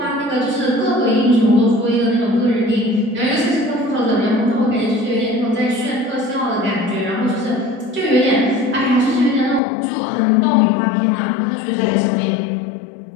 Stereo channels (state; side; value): drops out; right; at 9.6 s